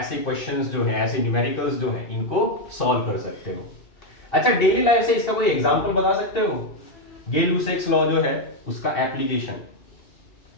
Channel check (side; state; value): right; late; 2.7 ms